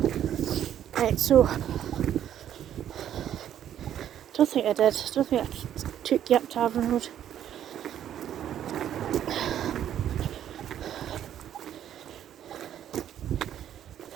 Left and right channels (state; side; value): quieter; left; 10.5 dB